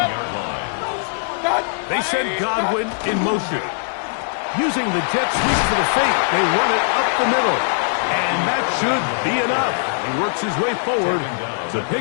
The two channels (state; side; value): silent; right; digital silence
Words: line. They send Godwin in motion. Using the jet sweep for the fake, they run it up the middle. And that should be enough. He works his way forward to